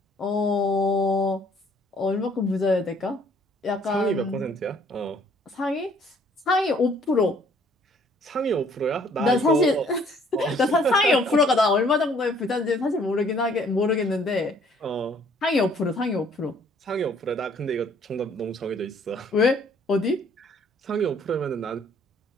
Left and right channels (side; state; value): both; normal; correlation 0.60